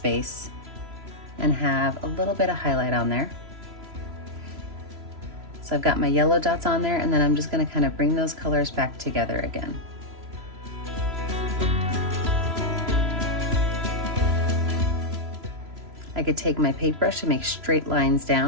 and have a little bit of highlight on there. So I've got my yellow dots on there, and then I'm just gonna kind of bring those colors back together again. I could take my paintbrush and make straight lines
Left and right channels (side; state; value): left; late; 3.0 ms